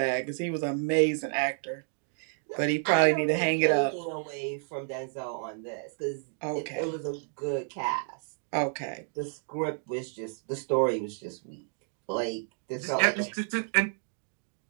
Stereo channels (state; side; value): silent; left; 57 dB below the other